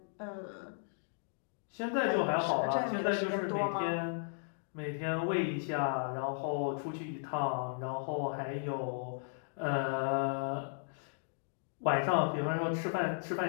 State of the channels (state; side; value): silent; right; digital silence